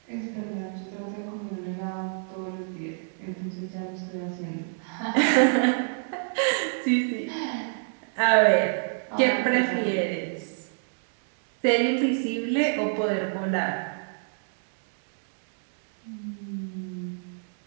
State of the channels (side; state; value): left; silent; digital silence